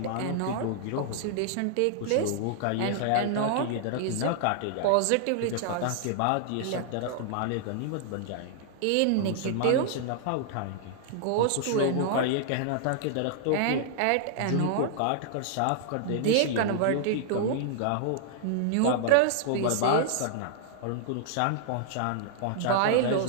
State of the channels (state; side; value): different; both; correlation -0.01